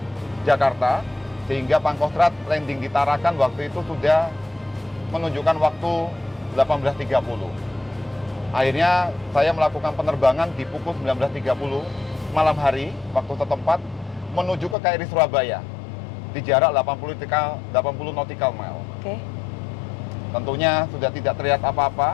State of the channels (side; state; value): right; drops out; at 14.8 s